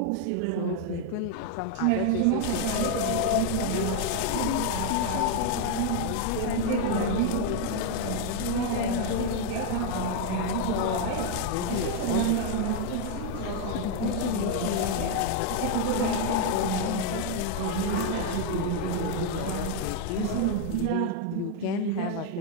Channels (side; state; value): both; different; correlation 0.01